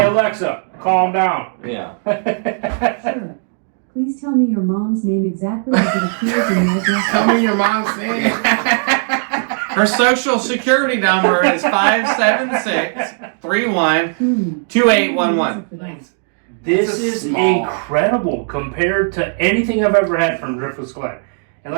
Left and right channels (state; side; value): silent; left; 59 dB below the other